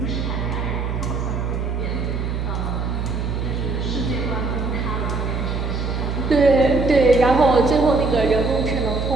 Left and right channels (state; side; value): noise; right; hum, 2 dB below the sound